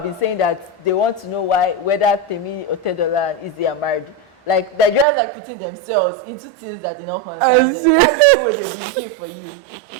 been saying that they want to know whether Temi or Tedola and Izzy are married. Like, they're just like putting themselves into things that do not concern them. That's the same way they'll be looking for you.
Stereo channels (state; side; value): drops out; left; at 5.1 s